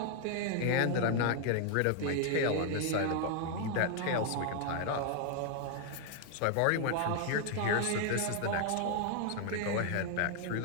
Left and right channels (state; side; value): different; both; correlation 0.00